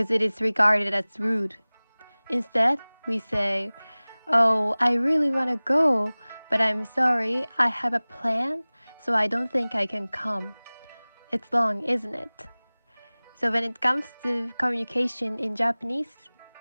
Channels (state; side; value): inverted; both; correlation -1.00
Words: it is regarded as rude. Instead, we say, "Oh, I really want to go, but I'm sorry, I have a plan, so I don't think I can come." It's long, isn't it? So when it comes to communication in Japanese,